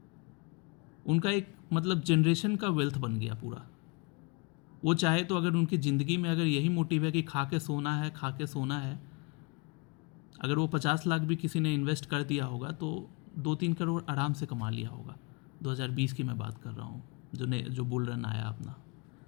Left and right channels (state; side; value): quieter; right; 29.1 dB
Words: उनका एक मतलब जनरेशन का वेल्थ बन गया पूरा। वो चाहे तो अगर उनकी ज़िंदगी में अगर यही मोटिव है कि खा के सोना है, अगर वो 50 लाख भी किसी ने इन्वेस्ट कर दिया होगा तो 2-3 करोड़ आराम से कमा लिया होगा। 2020 की मैं बात कर रहा हूँ, जो बुल रन आया अपना